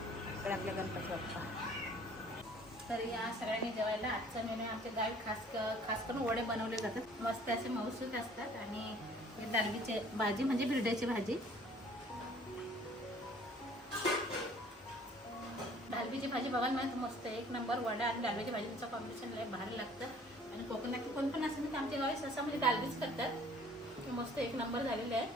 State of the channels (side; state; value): both; normal; correlation 0.54